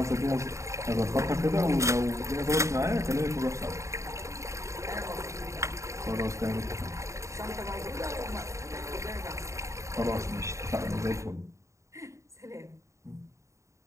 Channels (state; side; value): late; left; 0.14 ms